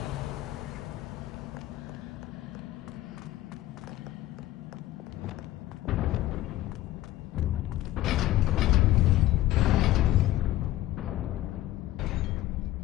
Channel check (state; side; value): quieter; right; 15.2 dB